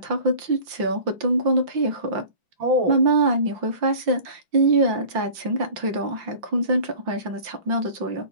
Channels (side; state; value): left; late; 5.7 ms